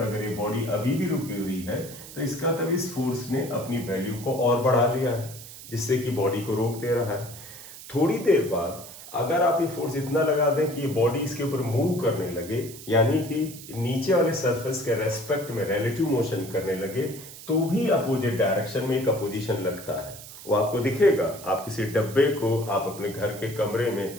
अगर ये बॉडी अभी भी रुकी हुई है, तो इसका मतलब इस फोर्स ने अपनी वैल्यू को और बढ़ा लिया है, जिससे कि बॉडी को रोक दे रहा है। थोड़ी देर बाद अगर आप ये फोर्स इतना लगा दें कि ये बॉडी इसके ऊपर मूव करने लगे, यानी कि नीचे वाले सरफेस के रेस्पेक्ट में रिलेटिव मोशन करने लगे, तो भी अपोजिट डायरेक्शन में एक अपोजिशन लगता है। वो आपको दिखेगा। आप किसी डब्बे को आप अपने घर के कमरे में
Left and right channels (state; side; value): noise; right; hiss, 15 dB below the sound